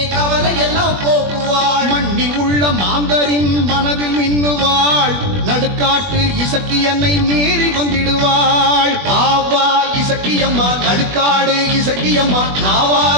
கவலை எல்லாம் போக்குவாள். மண்ணில் உள்ள மாந்தரின் மனதில் மின்னுவாள். நடுக்காட்டு இசக்கியன்னை நேரில் வந்திடுவாள். பாவா இசக்கியம்மா நடுக்காடு இசக்கியம்மா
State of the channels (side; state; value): left; late; 21 ms